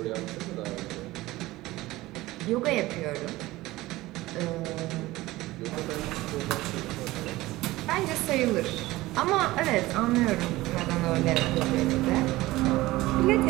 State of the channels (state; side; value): quieter; left; 18.5 dB